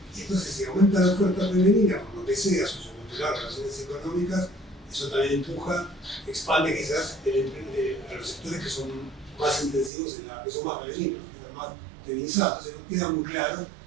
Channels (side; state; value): left; drops out; at 9.9 s